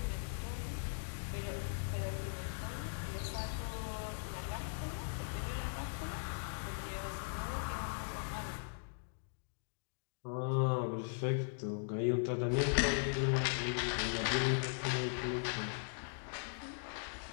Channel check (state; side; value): silent; right; digital silence